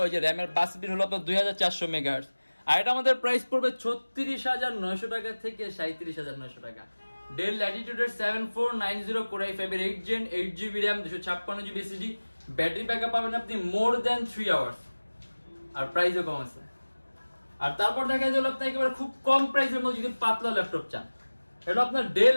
ওই যে র্যামের বাস স্পিড হলো আপনার 2400 মেগাহার্টজ। আর এটা আমাদের প্রাইস পড়বে 36900 টাকা থেকে 37900 টাকা। ডেল ল্যাটিটিউডের 7490 কোর i5 এর 8 gen 8GB RAM 256GB SSD, battery backup পাবেন আপনি মোর দ্যান 3 আওয়ার্স, আর প্রাইসও কম আছে। আর তারপর দেখা গেল আপনি একেবারে খুব কম প্রাইসের মধ্যে যদি পাতলা ল্যাপটপ চান, এটা আপনার ডেল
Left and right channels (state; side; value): inverted; both; correlation -1.00